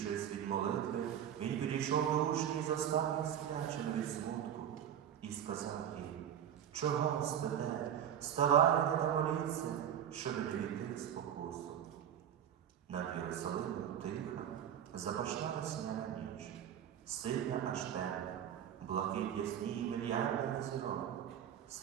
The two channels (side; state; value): left; quieter; 9.7 dB